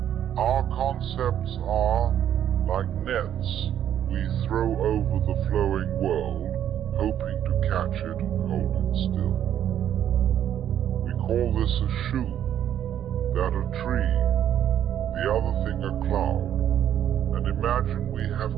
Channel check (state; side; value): quieter; left; 10.3 dB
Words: our concepts are like nets we throw over the flowing world, hoping to catch it and hold it still. We call this a shoe, that a tree, the other thing a cloud, and imagine we have